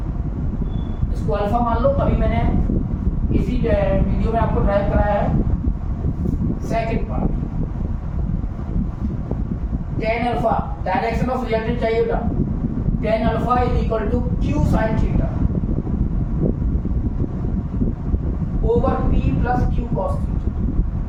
इसको अल्फा मान लो। अभी मैंने इसी वीडियो में आपको ड्राइव कराया है second part. tan alpha direction of resultant चाहिए बेटा, tan alpha is equal to Q sin theta over P plus Q cos theta.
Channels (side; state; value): both; identical; correlation 1.00